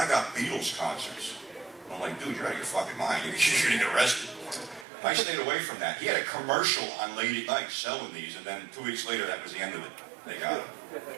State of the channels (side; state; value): left; drops out; at 4.9 s